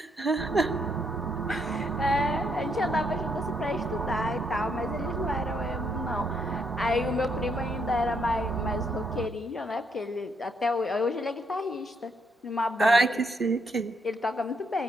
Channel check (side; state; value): both; normal; correlation 0.75